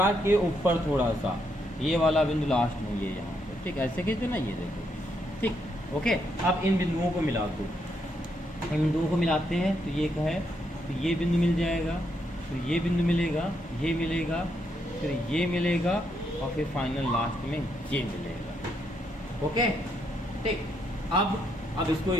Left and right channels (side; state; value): both; normal; correlation 0.77